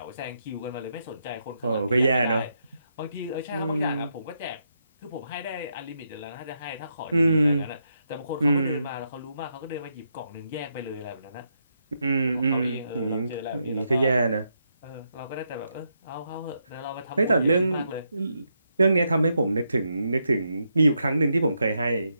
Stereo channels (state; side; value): inverted; both; correlation -0.81